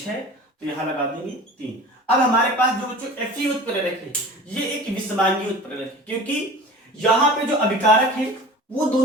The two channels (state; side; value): normal; both; correlation 0.40